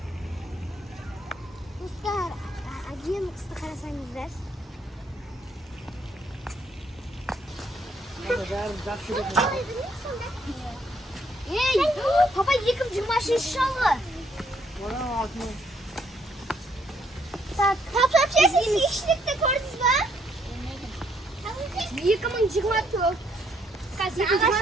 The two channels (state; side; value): normal; both; correlation 0.70